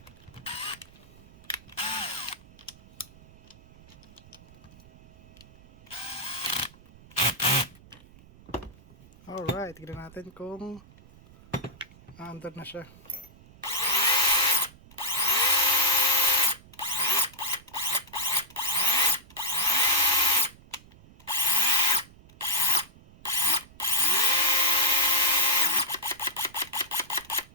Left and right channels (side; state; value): right; noise; rumble, 23 dB below the sound